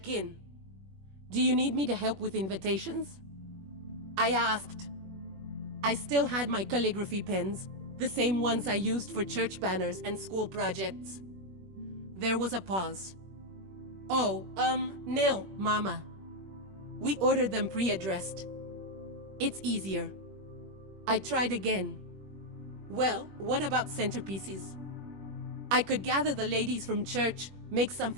in. "Do you need me to help with invitations?" I asked. I still had my calligraphy pens, the same ones I used for church banners and school projects. There was a pause. "Oh, no, Mama. We ordered them pre-addressed. It's easier." I tried again. "Well, what about centerpieces? I could gather the ladies from church, make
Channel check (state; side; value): late; left; 21 ms